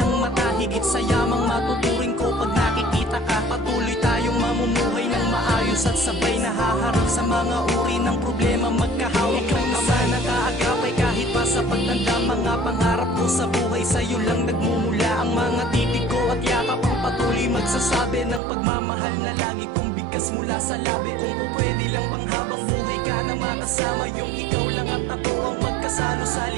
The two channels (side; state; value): left; drops out; at 18.4 s